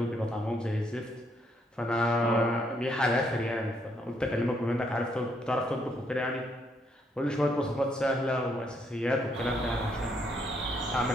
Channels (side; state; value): both; normal; correlation 0.73